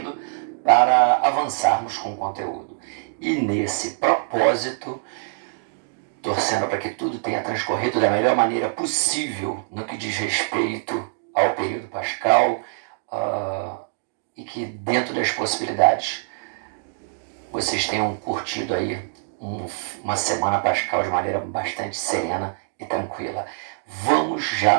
para avançarmos com o conteúdo. E nesse propósito, torcendo para que tudo tenha transcorrido da melhor maneira possível no que diz respeito ao período pascal, e que dentro das possibilidades vocês tenham curtido aí uma semana pascal de maneira bastante serena e tranquila. Vamos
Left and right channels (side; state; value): left; silent; digital silence